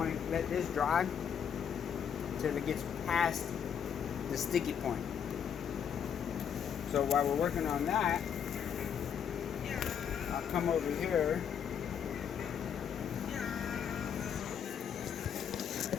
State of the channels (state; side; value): quieter; right; 8.0 dB